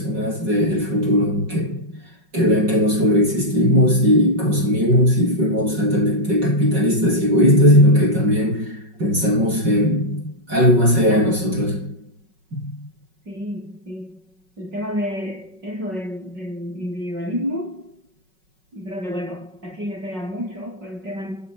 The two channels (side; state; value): left; late; 5.4 ms